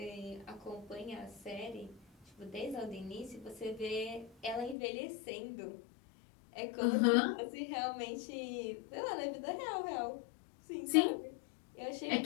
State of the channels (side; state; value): right; drops out; at 4.8 s